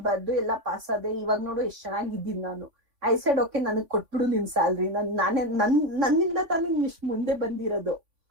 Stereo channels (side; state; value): left; late; 3.5 ms